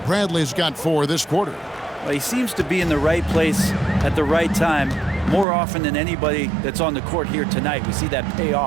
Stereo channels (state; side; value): drops out; left; at 5.5 s